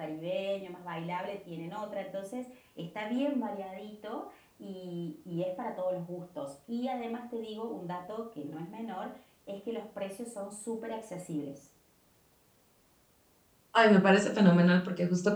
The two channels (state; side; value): identical; both; correlation 1.00